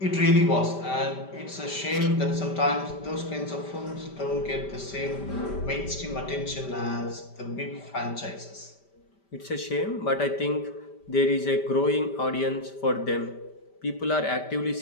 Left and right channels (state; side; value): late; right; 5.1 ms